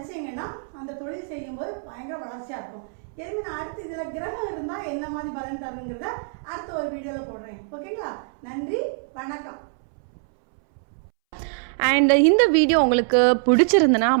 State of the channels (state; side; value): silent; left; 62 dB below the other